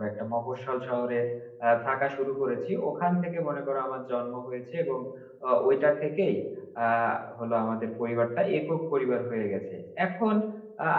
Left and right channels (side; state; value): both; identical; correlation 1.00